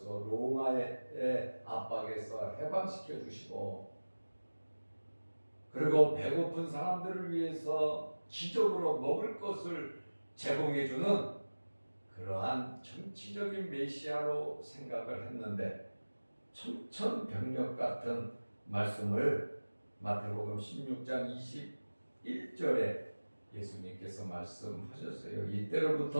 로마의 압박에서 해방시켜 주시고 그리고 배고픈 사람들을 위해서 기적으로 먹을 것을 제공해 주는 그러한 정치적인 메시아로 생각을 했는데 천천병력 같은 말씀을 마태복음 16장 21절에 예수님께서 말씀하셨어요.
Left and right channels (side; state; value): both; inverted; correlation -1.00